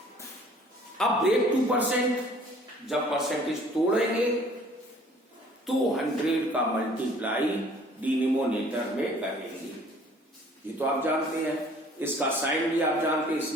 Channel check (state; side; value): normal; both; correlation 0.54